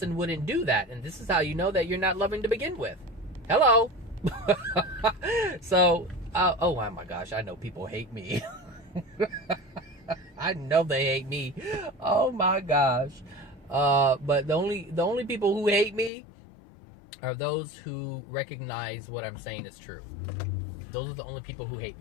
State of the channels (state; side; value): drops out; right; at 16.1 s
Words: wouldn't do that. And this is how you know that you're not loving to begin with. Hello. So, oh my gosh, I know people hate me. I know they hate me. Oh my gosh. But the only people who hate me are those who recognize what I'm saying is true. Those are the only people who hate